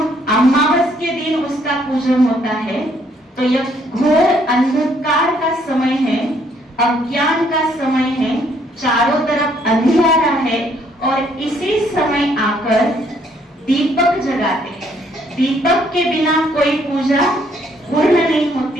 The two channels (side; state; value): both; normal; correlation 0.67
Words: अमावस के दिन उसका पूजन होता है तो यह घोर अंधकार का समय है, अज्ञान का समय है, चारों तरफ अंधियारा है, और इसी समय आकर दीपक जगाते हैं। दीपक के बिना कोई पूजा पूर्ण नहीं